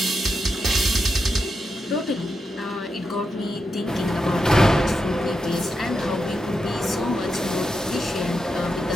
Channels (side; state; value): both; normal; correlation 0.86